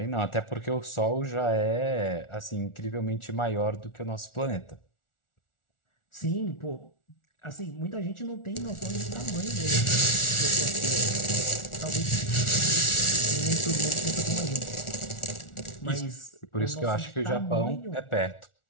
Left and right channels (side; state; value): right; late; 1.4 ms